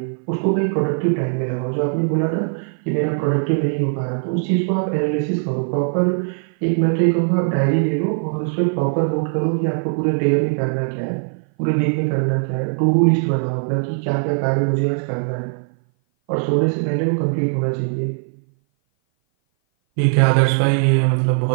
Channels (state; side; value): silent; left; 57 dB below the other